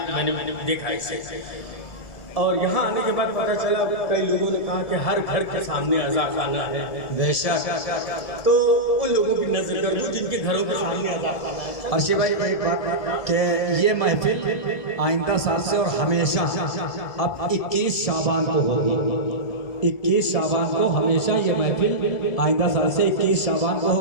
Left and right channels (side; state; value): right; late; 1.7 ms